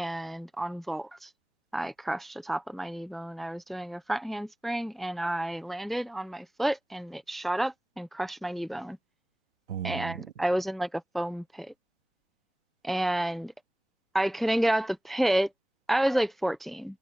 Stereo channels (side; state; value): both; normal; correlation 0.98